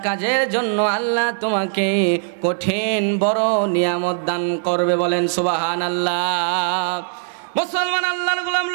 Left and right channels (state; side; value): silent; left; digital silence